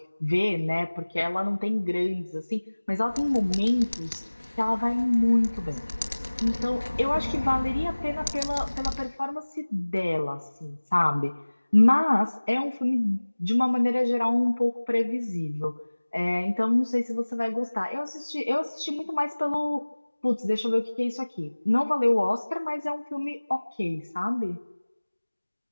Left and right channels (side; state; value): both; inverted; correlation -1.00